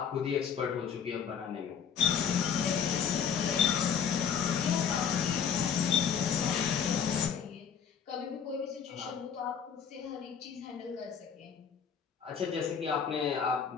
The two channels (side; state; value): right; quieter; 7.5 dB